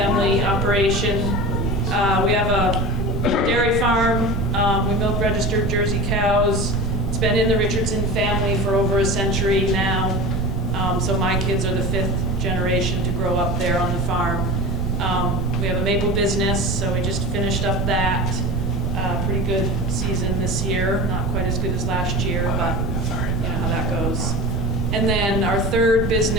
operation. We have a dairy farm. We milk registered Jersey cows. It's been in the Richardson family for over a century now. So my kids are the 5th generation to grow up there on the farm. We have a maple business, so we just finished up that. Pretty good season this year. Not quite as good as last year, but you know how that goes. And then our third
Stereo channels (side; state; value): right; noise; rumble, 2 dB below the sound